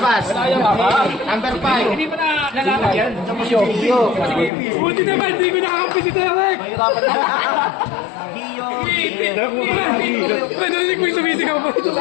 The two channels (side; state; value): right; drops out; at 4.5 s